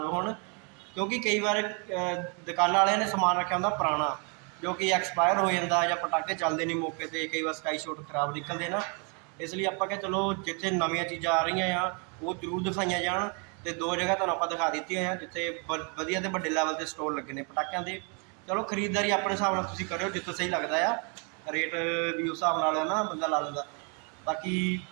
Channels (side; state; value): left; quieter; 36.0 dB